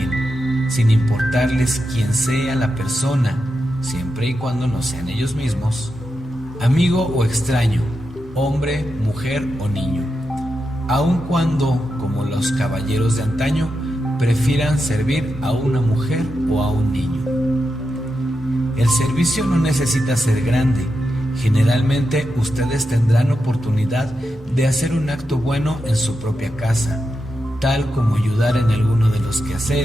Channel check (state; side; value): normal; both; correlation 0.87